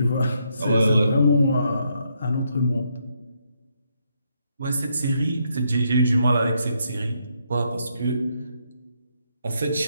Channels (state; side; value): inverted; both; correlation -0.77